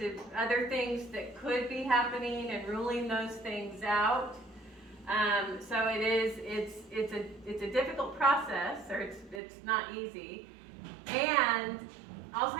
other things that could be happening and ruling those things out. So it's a difficult process, or it's not easy. And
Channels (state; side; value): drops out; left; at 9.4 s